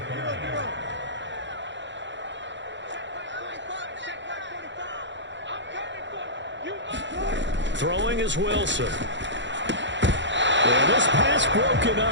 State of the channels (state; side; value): late; left; 0.53 ms